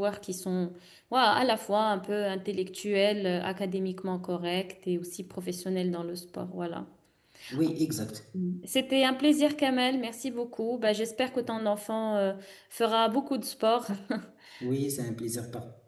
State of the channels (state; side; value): identical; both; correlation 1.00